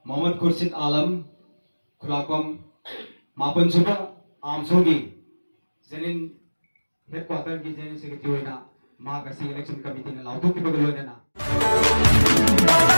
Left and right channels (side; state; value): both; inverted; correlation -1.00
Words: Mohammad Khurshid Alam Khulakom Mapan Suba Amsogi Zenin headquarter ki Zenin secretary na Mahakasi election committee na lautu ki bagalo na